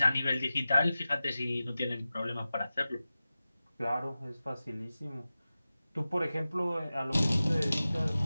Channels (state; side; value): inverted; both; correlation -0.95